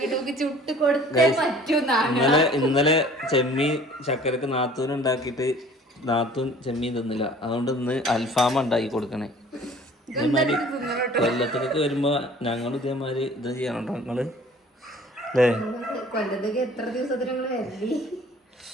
നമുക്ക് ചുട്ട് കൊടുത്തേ പറ്റൂന്നാണ്. ഇന്നലെ ചെമ്മീൻ ചക്കരക്ക് നാത്തൂൻ ഉണ്ടാക്കിയിട്ട് നാത്തൂൻ ചെമ്മീൻ തിന്നില്ല. അതുകൊണ്ട് ഇന്ന് അൽഫാമ ഉണ്ടാക്കി കൊടുക്കണേ. ഇതേമാതിരി കൊല്ലത്തേക്ക് വരുമ്പോ ഞങ്ങൾ ഇതേമാതിരി ഇത് ചെയ്യണോ നിങ്ങള് അല്ലേ? കൊല്ലത്തേക്ക് എത്ര ദിവസത്തിന് ഞങ്ങൾ വരല്ലേ?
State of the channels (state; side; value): normal; both; correlation 0.50